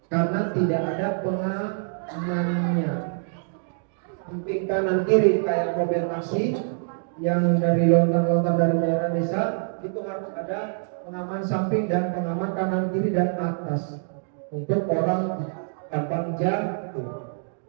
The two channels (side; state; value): left; silent; 60 dB below the other